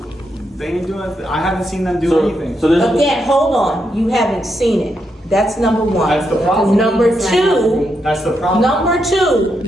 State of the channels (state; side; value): normal; both; correlation 0.82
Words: They ain't doing. I haven't seen them do anything. So there's. Again, hold on. You haven't seen it. That's number one. That's the problem. Number two. That's the problem. Number two,